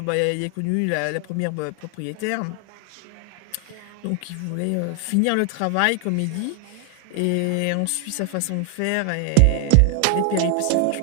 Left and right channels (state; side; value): different; both; correlation 0.00